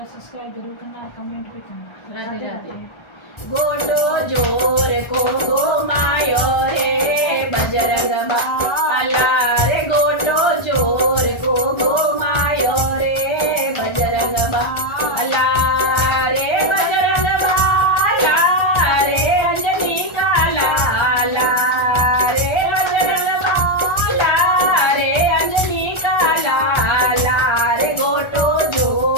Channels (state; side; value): late; right; 1.3 ms